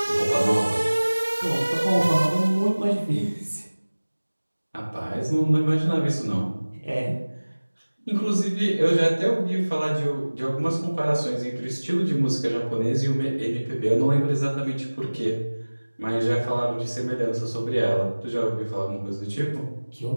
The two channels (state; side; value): inverted; both; correlation -1.00